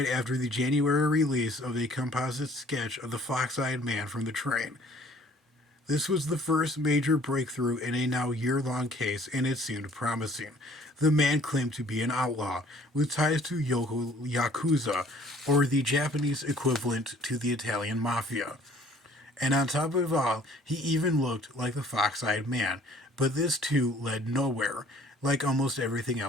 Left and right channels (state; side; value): normal; both; correlation 0.56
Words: after the January release of a composite sketch of the fox-eyed man from the train. This was the first major breakthrough in a now year-long case, and it seemed promising. The man claimed to be an outlaw with ties to Yakuza, or the Japanese equivalent to the Italian mafia. And on top of it all, he even looked like the fox-eyed man. But this too led nowhere, like almost everything